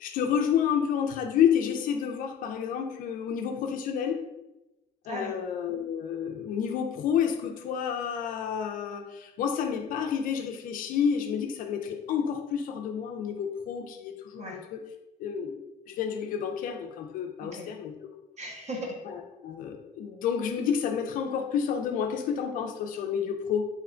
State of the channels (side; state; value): right; quieter; 7.3 dB